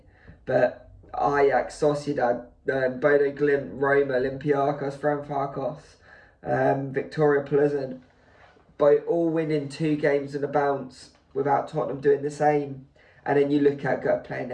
But Ajax, Sociedad, Bodo Glimt, Roma, Olympiacos, Frankfurt, Victoria Pleasant, by all winning 2 games and a bounce without Tottenham doing the same. And then you look at playing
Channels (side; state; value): both; identical; correlation 1.00